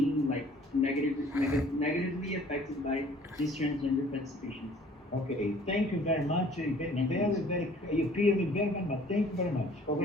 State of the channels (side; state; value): both; normal; correlation 0.54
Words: like negatively affected by these transgender participations. Okay. Thank you very much. Very, Thank you. very, you clear me very, very much. Thank you very much. Thank you.